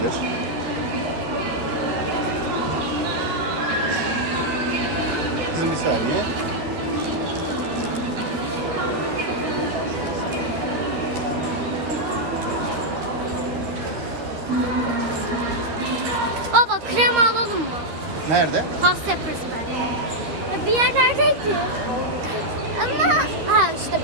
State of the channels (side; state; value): left; late; 13 ms